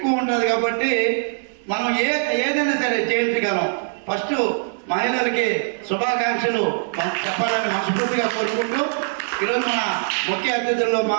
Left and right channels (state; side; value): silent; left; 62 dB below the other